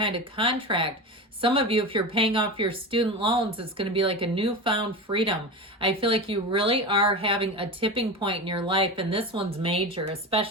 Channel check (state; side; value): normal; both; correlation 0.25